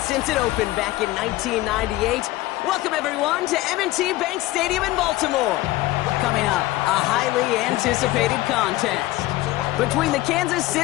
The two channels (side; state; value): right; quieter; 17.4 dB